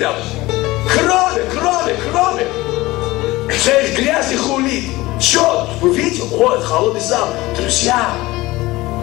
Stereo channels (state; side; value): quieter; right; 19.5 dB